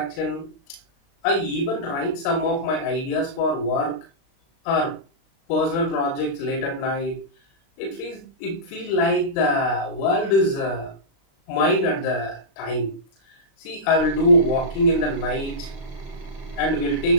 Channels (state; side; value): late; right; 36 ms